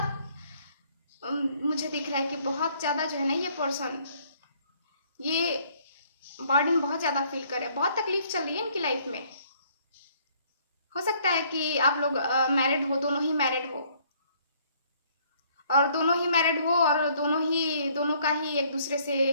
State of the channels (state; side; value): inverted; both; correlation -0.63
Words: मुझे दिख रहा है कि बहुत ज्यादा जो है ना ये पर्सन ये बर्डन बहुत ज्यादा फील कर रहे हैं। बहुत तकलीफ चल रही है इनकी लाइफ में। हो सकता है कि आप लोग मैरिड हो, दोनों ही मैरिड हो, और दोनों का ही एक दूसरे से